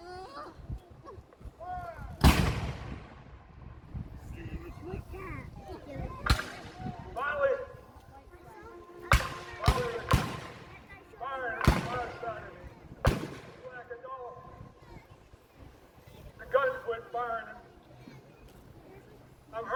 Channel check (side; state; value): both; identical; correlation 1.00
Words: Finally, firing fire started. Slacking off. The guns quit firing. I'm